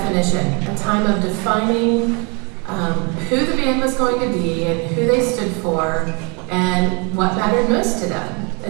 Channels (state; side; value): quieter; left; 32.9 dB